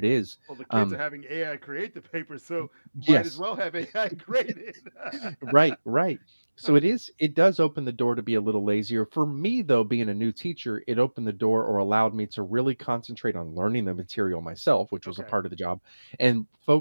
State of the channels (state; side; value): inverted; both; correlation -1.00